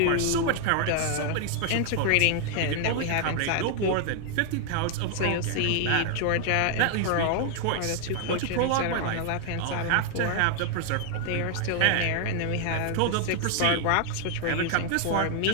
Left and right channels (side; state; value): both; different; correlation 0.00